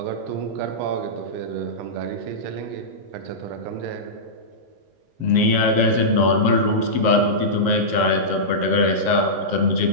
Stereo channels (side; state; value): left; late; 7.5 ms